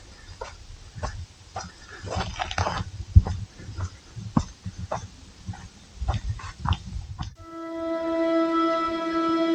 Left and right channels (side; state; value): both; identical; correlation 1.00